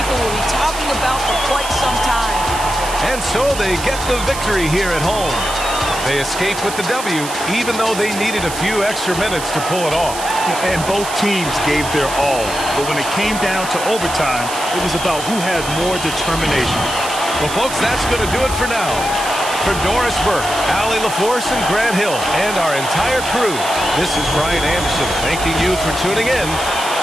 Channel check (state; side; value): noise; right; hiss, 9 dB below the sound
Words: will be talking about for quite some time. And so they get the victory here at home. They escape with the W, even though they needed a few extra minutes to pull it off. And both teams gave their all. But when it came down to overtime, it was about who had more determination. Well, folks, that's going to do it for now. For Doris Burke, Allie LaForce, and Grant Hill, and our entire crew, this is Brian Anderson thanking you for tuning in.